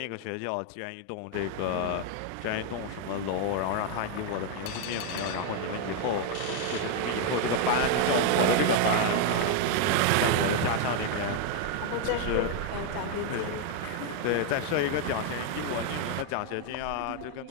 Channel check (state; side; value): different; both; correlation 0.01